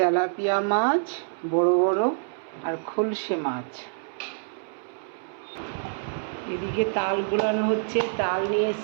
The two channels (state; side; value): silent; left; 61 dB below the other